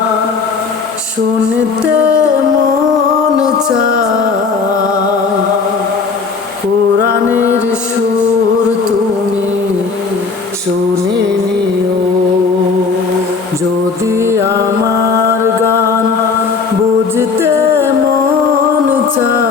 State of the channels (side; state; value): right; quieter; 4.9 dB